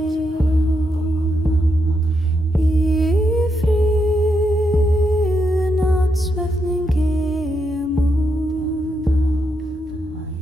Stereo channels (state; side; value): normal; both; correlation 0.82